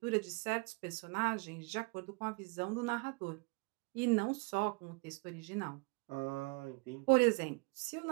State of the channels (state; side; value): quieter; left; 29.4 dB